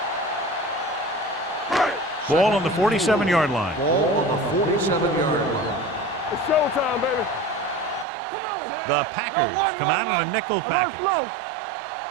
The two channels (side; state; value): left; drops out; at 8.1 s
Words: Ball on the 47-yard line. Ball on the 47-yard line. It's showtime, baby. Come on. The Packers come out in a nickel package.